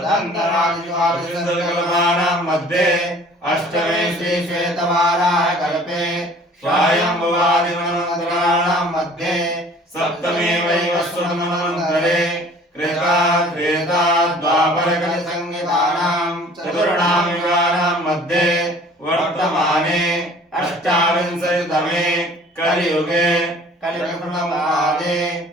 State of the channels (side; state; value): both; normal; correlation 0.51